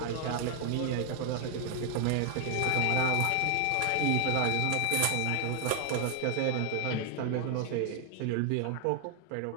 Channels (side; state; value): both; different; correlation 0.00